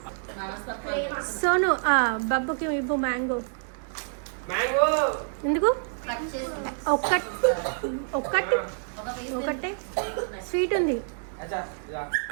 సోను బబ్బుకి ఇవ్వు మ్యాంగో. ఎందుకు? ఒకటే స్వీట్ ఉంది.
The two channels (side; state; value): left; silent; digital silence